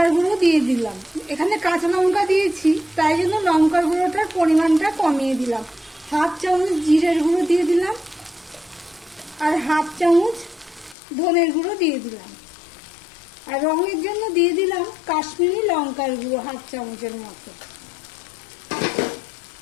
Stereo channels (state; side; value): drops out; right; at 11.0 s